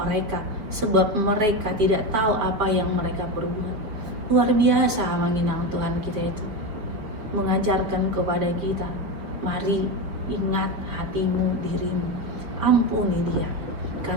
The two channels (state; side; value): late; left; 5.1 ms